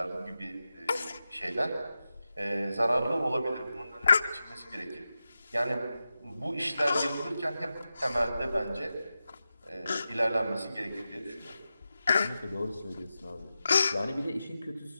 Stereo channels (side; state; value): both; inverted; correlation -0.92